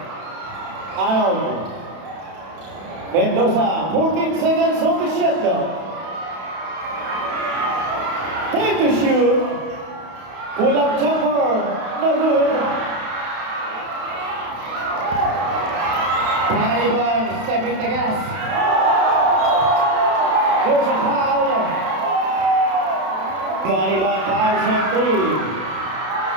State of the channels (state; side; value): late; left; 31 ms